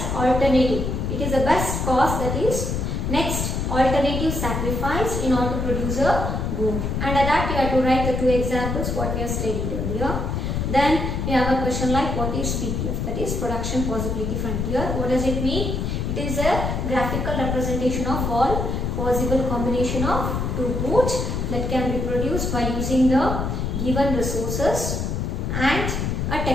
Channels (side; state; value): left; noise; rumble, 1 dB below the sound